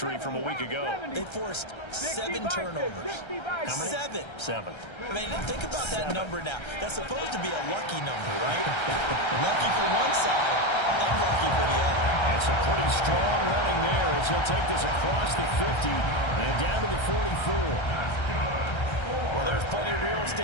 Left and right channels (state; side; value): late; right; 1.3 ms